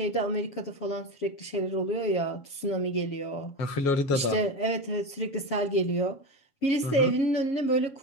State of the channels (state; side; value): late; right; 7.3 ms